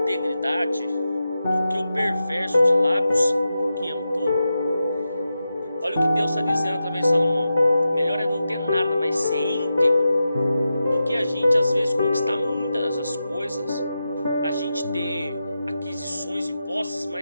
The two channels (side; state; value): both; inverted; correlation -0.90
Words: do que o perverso de lábios que é um tolo. Olha o que Deus está dizendo através de Salomão. Melhor é não ter nada, mas ser íntegro, do que a gente às vezes conquistar muitas dessas coisas, a gente ter aquisições e posses,